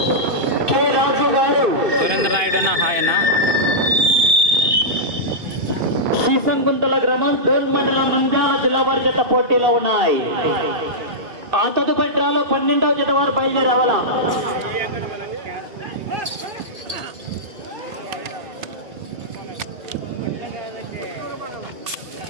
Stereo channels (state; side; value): late; left; 2.5 ms